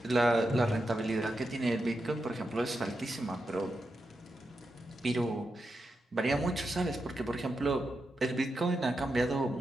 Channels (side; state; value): both; normal; correlation 0.87